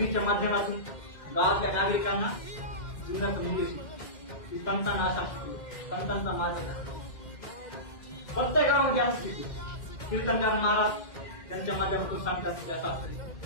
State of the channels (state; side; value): late; right; 2.1 ms